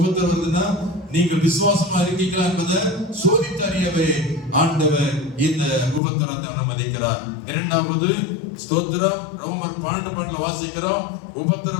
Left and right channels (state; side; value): drops out; right; at 6.0 s